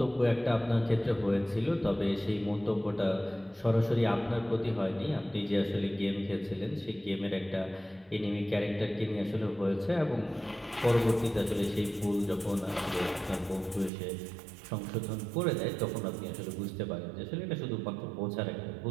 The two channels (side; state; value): left; drops out; at 13.9 s